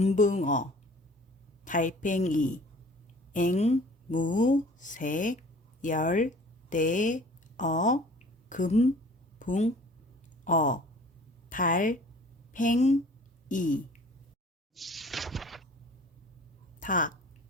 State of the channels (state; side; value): normal; both; correlation 0.49